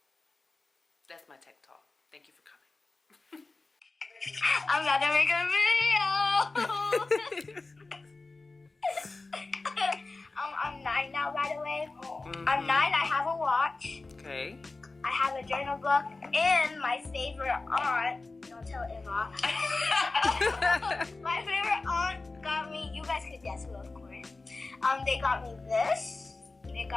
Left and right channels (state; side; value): quieter; right; 3.5 dB